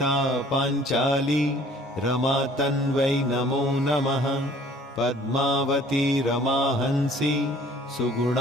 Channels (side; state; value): both; normal; correlation 0.53